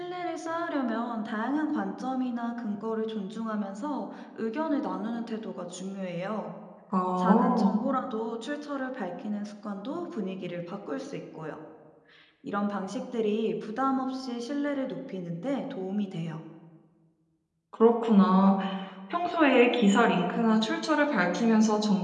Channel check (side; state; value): both; identical; correlation 1.00